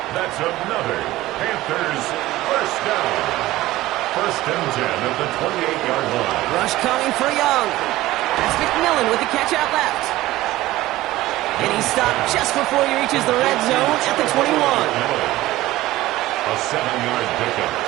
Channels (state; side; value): quieter; left; 16.8 dB